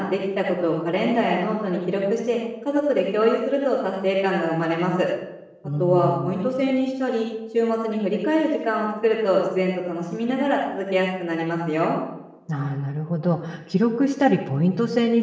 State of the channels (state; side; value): identical; both; correlation 1.00